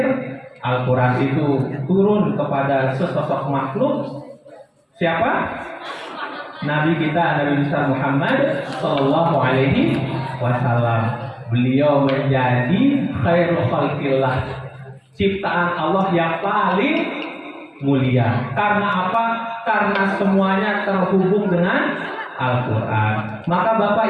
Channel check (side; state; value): both; identical; correlation 1.00